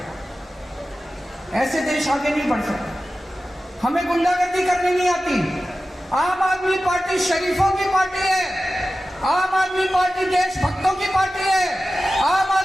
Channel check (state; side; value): normal; both; correlation 0.94